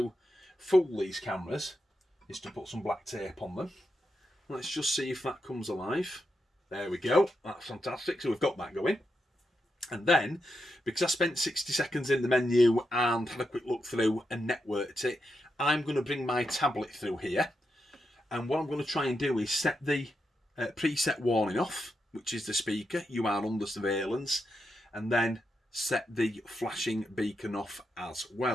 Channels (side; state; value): both; normal; correlation 0.85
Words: fool these cameras is to put some black tape on them. Let's just see if that comes alive. There we go. That's fantastic. So we've got that going. And then, because I spent 60 seconds in the menu and had a quick look through and networked it, I'm going to bring my tablet through here. And what I'm going to try and do is set the preset warning off, which is the speaker, "You are under surveillance," and then set the flashing beacon off as